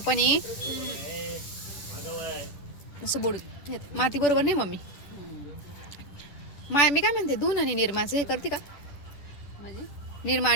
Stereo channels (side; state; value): right; late; 10 ms